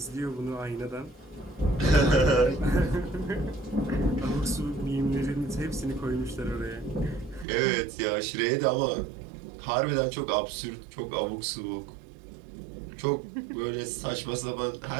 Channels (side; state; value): left; drops out; at 7.5 s